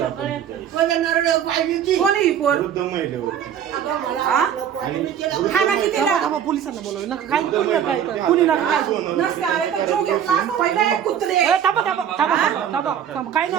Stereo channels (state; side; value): quieter; left; 9.1 dB